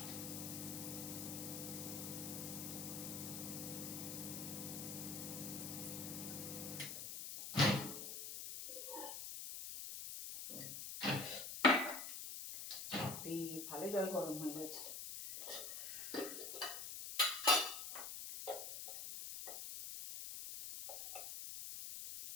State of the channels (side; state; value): left; noise; hiss, 6 dB below the sound